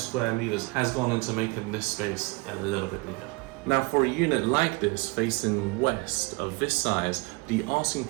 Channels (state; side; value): quieter; left; 27.0 dB